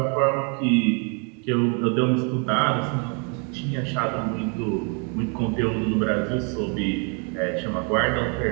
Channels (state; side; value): quieter; left; 35.5 dB